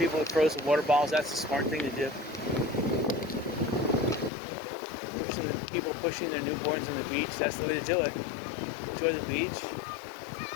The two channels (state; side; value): drops out; right; at 4.3 s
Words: with frozen water bottles, that's a smart thing to do. People pushing their newborns on the beach, that's the way to do it. Enjoy the beach.